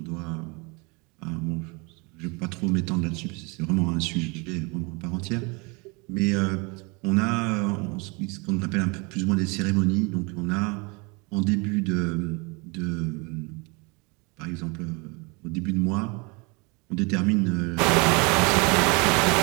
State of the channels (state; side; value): quieter; left; 29.2 dB